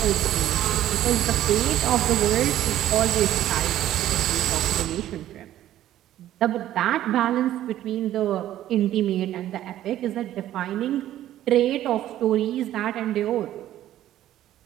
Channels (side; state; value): left; quieter; 12.9 dB